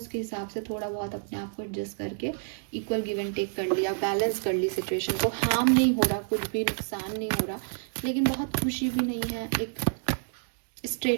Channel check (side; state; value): left; silent; digital silence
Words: हिसाब से थोड़ा बहुत अपने आप को एडजस्ट करके इक्वल गिव एंड टेक कर लिया, बैलेंस कर ली सिचुएशन को। हार्म नहीं हो रहा, कुछ भी नुकसान नहीं हो रहा, लेकिन बहुत खुशी भी नहीं है, एक